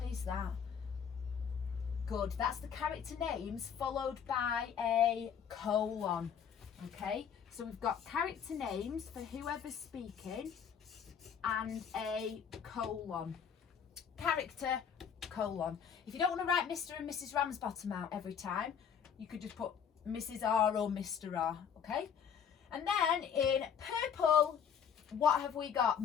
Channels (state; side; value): quieter; right; 7.7 dB